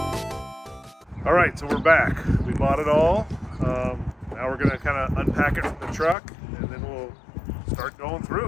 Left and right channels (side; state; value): right; drops out; at 6.2 s